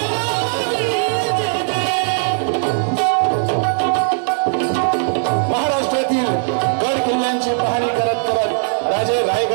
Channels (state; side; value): silent; left; digital silence